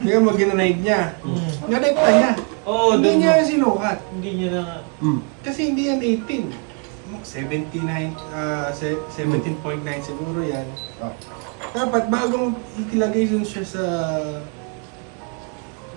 Tingnan mo, ginanaig niya. Ganekta niya. oh, Hindi doon niya mo. sinukat. Hindi niya na, Kasi hindi yan 18. 79, 17.9 siguro yan. Ah. Dapat bagong itilagay dun siya sa...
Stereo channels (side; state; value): left; quieter; 39.4 dB